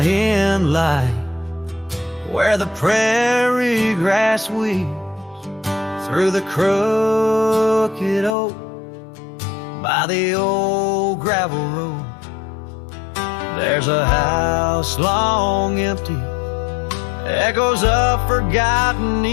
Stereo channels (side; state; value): right; drops out; at 8.3 s